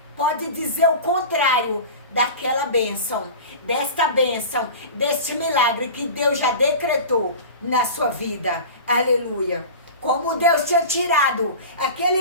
pode dizer o contrário daquela bênção. Desta bênção, deste milagre que Deus já decretou na sua vida. Aleluia. Como Deus tinha tirado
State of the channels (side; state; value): both; inverted; correlation -0.33